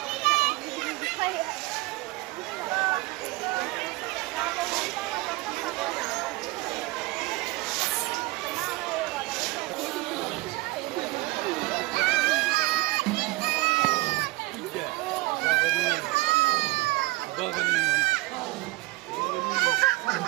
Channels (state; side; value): quieter; left; 20.6 dB